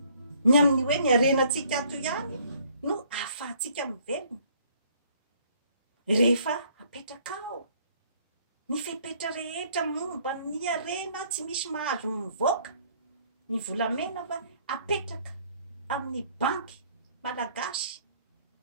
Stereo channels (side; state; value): both; inverted; correlation -0.61